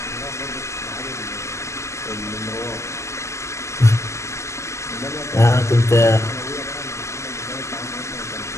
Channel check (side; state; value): right; late; 0.14 ms